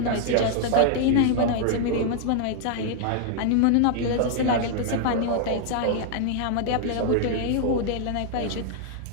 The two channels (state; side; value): different; both; correlation -0.01